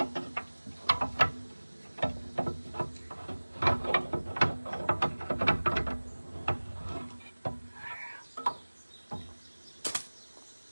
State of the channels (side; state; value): both; inverted; correlation -1.00